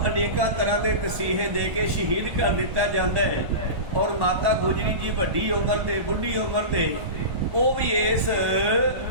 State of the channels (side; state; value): left; late; 1.3 ms